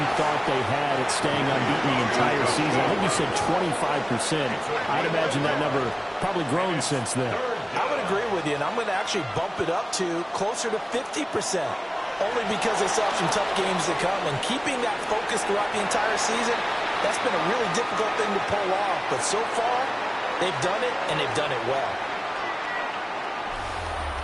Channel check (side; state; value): both; identical; correlation 1.00